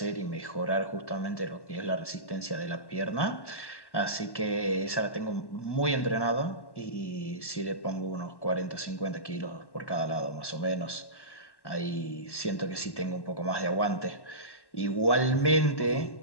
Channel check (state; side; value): late; right; 1.1 ms